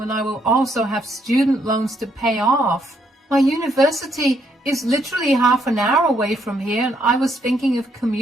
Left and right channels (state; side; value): normal; both; correlation 0.73